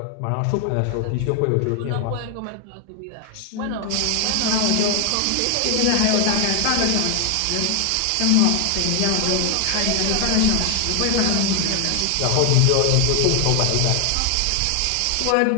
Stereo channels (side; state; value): both; different; correlation 0.00